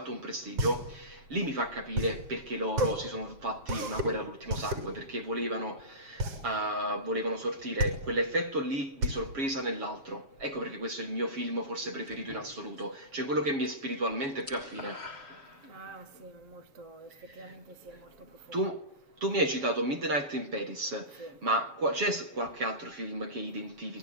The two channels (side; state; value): left; late; 7.2 ms